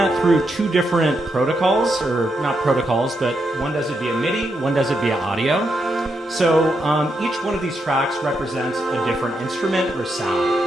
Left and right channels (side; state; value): both; normal; correlation 0.82